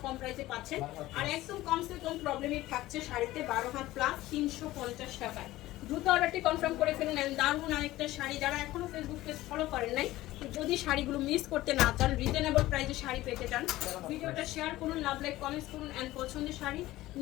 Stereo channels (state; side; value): quieter; right; 16.7 dB